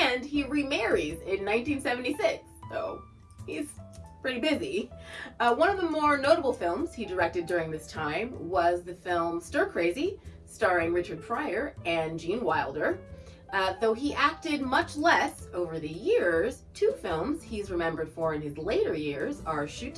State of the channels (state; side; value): identical; both; correlation 1.00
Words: he remarries in 1976, so he's pretty busy. One of the more notable films he directed during this time was the film Stir Crazy, starring Richard Pryor and Gene Wilder. Though he acted much less over the years, 2 films he's remembered for in his later years are Shoot